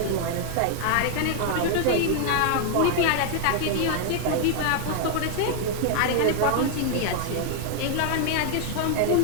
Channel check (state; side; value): different; both; correlation 0.00